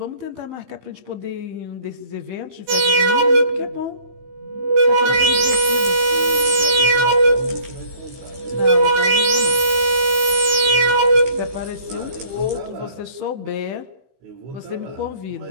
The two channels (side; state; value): left; late; 16 ms